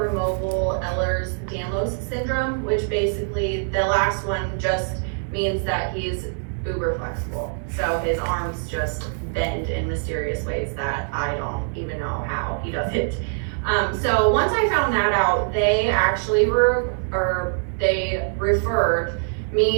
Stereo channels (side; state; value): left; silent; 63 dB below the other